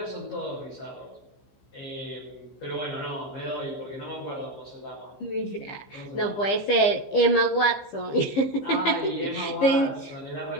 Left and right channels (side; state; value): right; late; 15 ms